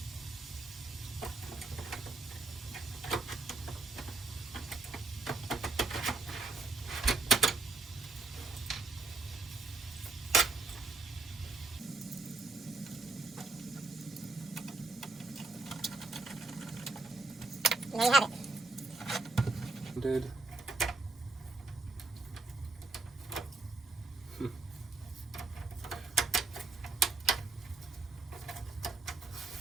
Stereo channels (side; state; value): left; quieter; 3.5 dB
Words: There you have it. Did.